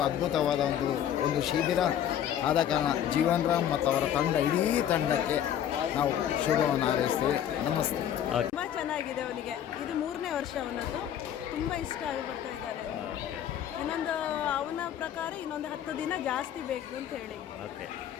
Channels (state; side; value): quieter; right; 10.2 dB